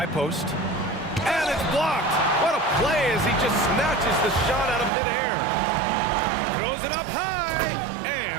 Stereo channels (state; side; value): drops out; left; at 4.9 s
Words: post. And it's blocked. What a play as he just snatches the shot out of midair. Throws it up high.